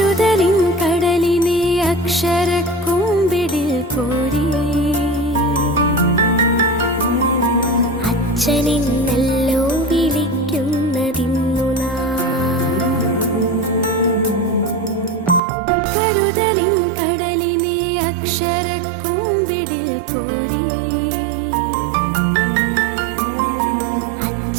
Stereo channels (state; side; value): drops out; left; at 15.4 s